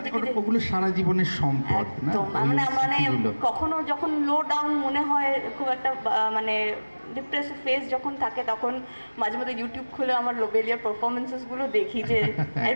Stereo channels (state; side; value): inverted; both; correlation -1.00